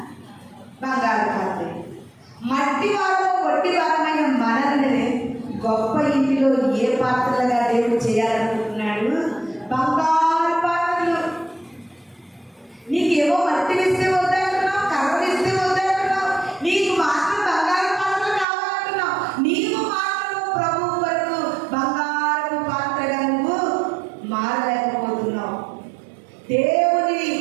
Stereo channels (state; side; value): drops out; left; at 18.4 s